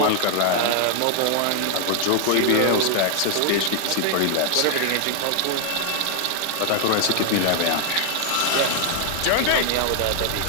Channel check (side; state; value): both; different; correlation 0.00